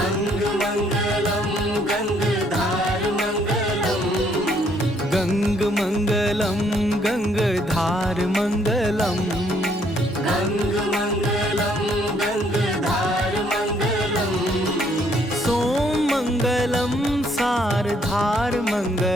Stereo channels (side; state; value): both; normal; correlation 0.67